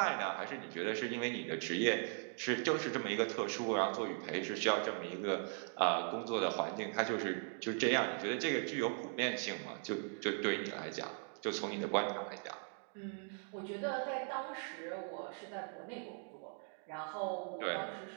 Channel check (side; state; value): left; silent; 52 dB below the other